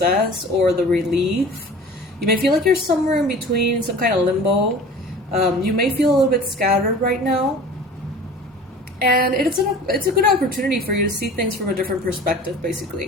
or the relief. You may feel like you're somewhere in between, some kind of limbo. You may feel a little bit scattered right now. And it's a good opportunity for you to see things from a different perspective,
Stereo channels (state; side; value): normal; both; correlation 0.42